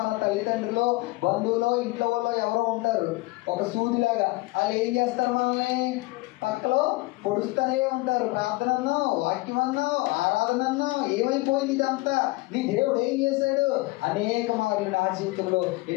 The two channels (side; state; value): right; quieter; 22.4 dB